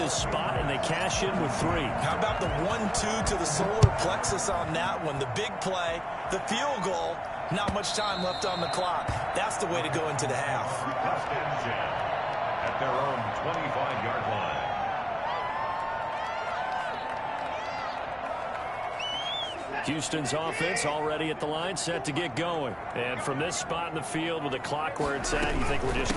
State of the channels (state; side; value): identical; both; correlation 1.00